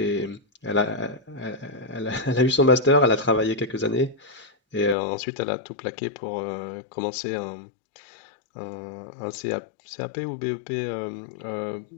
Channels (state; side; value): drops out; right; at 5.0 s